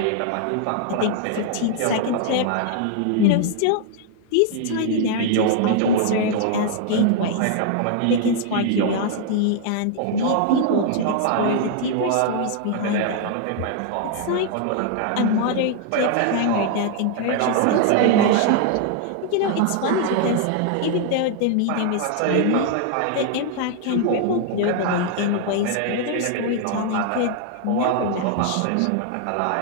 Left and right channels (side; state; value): both; different; correlation 0.00